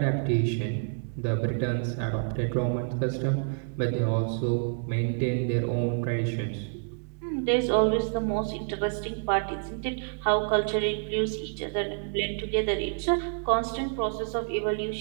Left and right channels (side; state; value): left; silent; 59 dB below the other